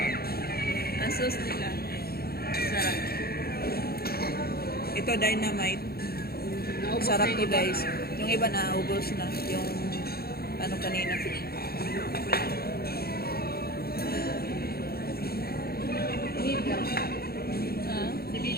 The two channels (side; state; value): right; late; 0.45 ms